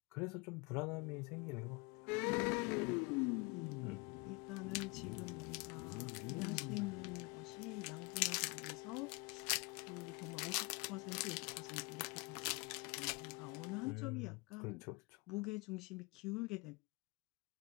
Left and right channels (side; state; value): right; quieter; 27.8 dB